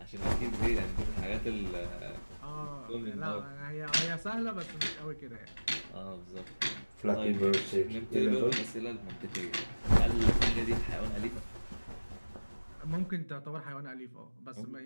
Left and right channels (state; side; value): inverted; both; correlation -1.00